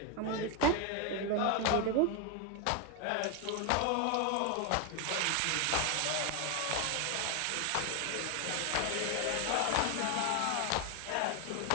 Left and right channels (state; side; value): different; both; correlation 0.01